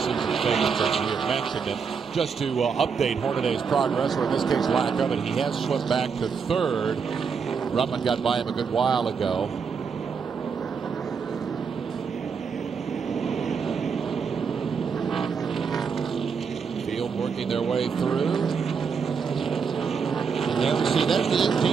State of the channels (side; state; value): left; quieter; 5.9 dB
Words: favorites, as we have mentioned. And just to update Hornaday's progress, or in this case lack of it, he has slipped back to 3rd. Ruttman got by him a good while ago. Field working their way through. Yeah, see, there's the